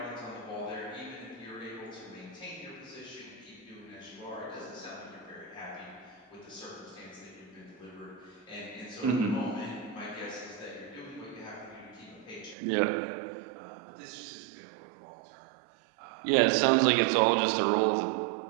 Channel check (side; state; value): left; drops out; at 12.6 s